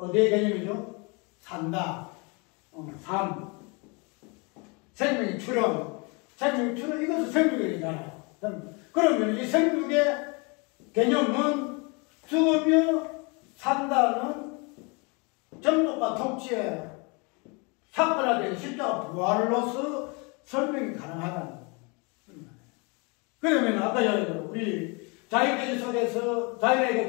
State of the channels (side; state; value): right; quieter; 30.7 dB